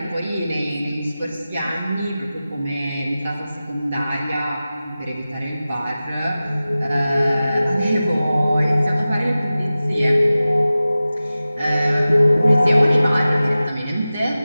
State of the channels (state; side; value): inverted; both; correlation -0.96